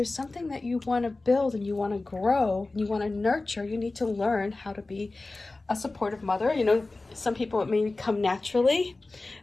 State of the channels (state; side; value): quieter; right; 3.2 dB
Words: something that you want to build and you want to grow and you want to nurture, you need to learn how to be a supportive mother. Some people it may come naturally.